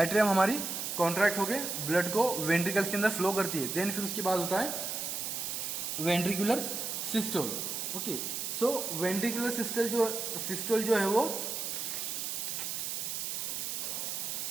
हमारी कॉन्ट्रैक्ट होके ब्लड को वेंट्रिकल्स के अंदर फ्लो करती है। देन फिर उसके बाद होता है वेंट्रिकुलर सिस्टोल ओके। सो वेंट्रिकुलर सिस्टोल जो है वो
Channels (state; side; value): noise; right; hiss, 3 dB below the sound